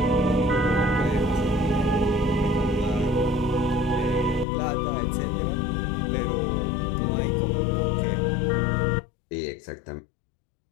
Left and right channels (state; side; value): drops out; right; at 4.5 s